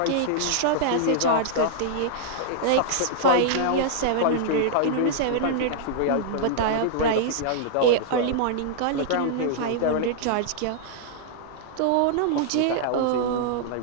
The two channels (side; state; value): both; different; correlation -0.02